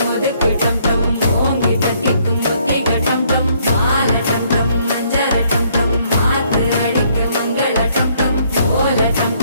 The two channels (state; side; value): inverted; both; correlation -0.67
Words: ஒதுக்கு டம் டம் ஓங்கி தட்டிக்கும் புத்திக டம் டம் மாலை டம் டம் மஞ்சள டம் டம் மாத்து அடிக்க மங்கள டம் டம் ஓல டம்